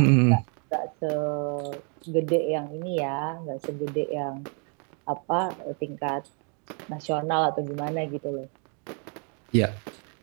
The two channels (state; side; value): quieter; left; 39.4 dB